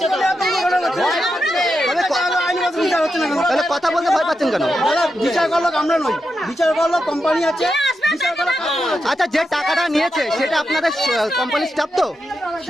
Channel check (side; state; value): both; normal; correlation 0.87